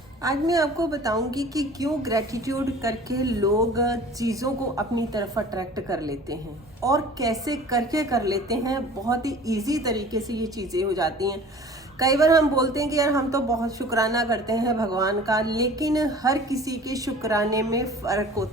आज मैं आपको बताऊंगी कि क्यों ग्रैटिट्यूड करके लोग चीज़ों को अपनी तरफ अट्रैक्ट कर लेते हैं और कैसे करके कर लेते हैं। बहुत ही इजी तरीके से ये चीज़ें हो जाती हैं। कई बार हम बोलते हैं कि यार हम तो बहुत शुक्राना करते हैं भगवान का, लेकिन हर किसी के शुक्राने में फ़र्क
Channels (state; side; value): normal; both; correlation 0.45